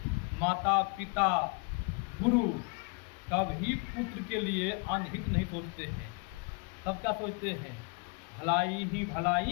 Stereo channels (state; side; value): quieter; right; 30.5 dB